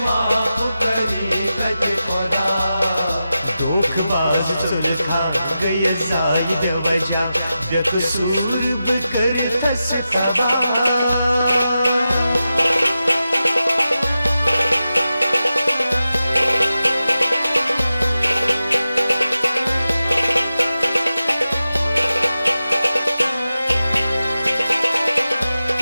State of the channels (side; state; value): both; inverted; correlation -0.92